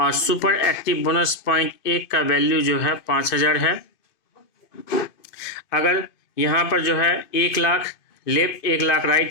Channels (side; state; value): right; late; 2.5 ms